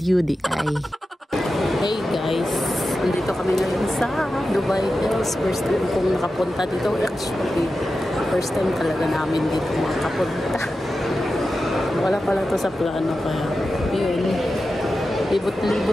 di ay. Hey guys, nandito kami ngayon sa Dubai Hills. First time kong nakapunta dito. Actually, first time talaga namin dito makapunta. Wala pala to sa plano kaya yun.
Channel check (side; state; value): both; normal; correlation 0.92